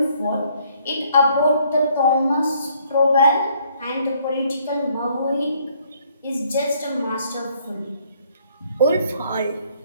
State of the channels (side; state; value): both; inverted; correlation -0.65